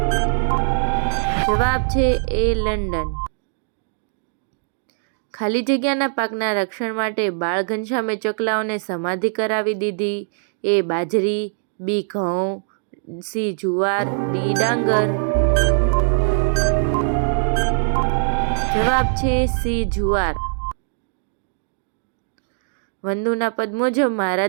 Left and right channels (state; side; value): silent; left; digital silence